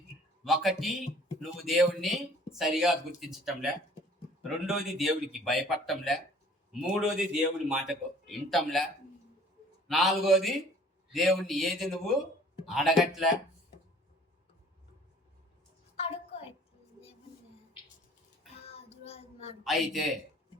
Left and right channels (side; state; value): both; normal; correlation 0.52